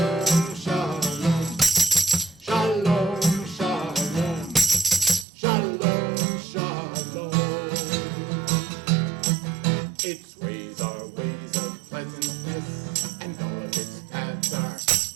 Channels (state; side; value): drops out; left; at 5.2 s